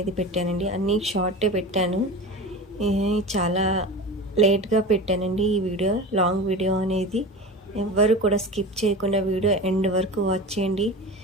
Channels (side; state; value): both; normal; correlation 0.30